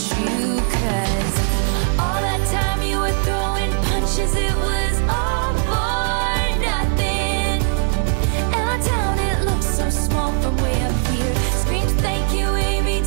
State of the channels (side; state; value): left; silent; 66 dB below the other